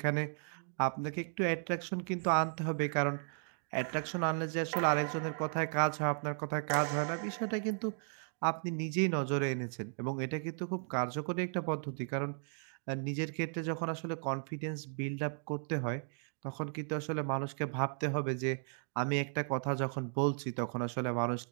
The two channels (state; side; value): silent; left; 54 dB below the other